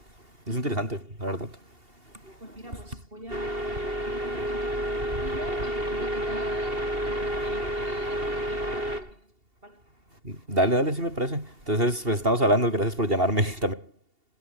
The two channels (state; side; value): late; left; 2.8 ms